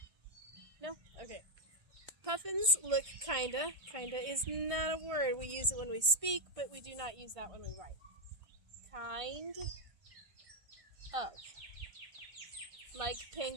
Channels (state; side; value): late; left; 1.6 ms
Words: No? Okay. Puffins look kinda. Kinda is not a word. We use it when we speak, but we do not use that when we write. Kind of. Like